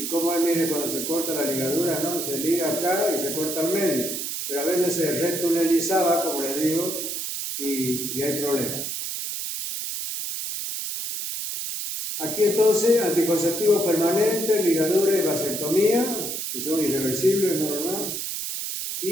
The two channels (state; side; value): noise; right; hiss, 4 dB below the sound